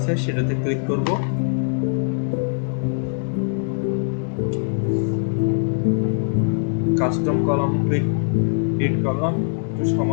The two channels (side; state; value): right; silent; 63 dB below the other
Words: সেটাতে ক্লিক করব। কাস্টম কলাম ক্লিক করলাম, একটু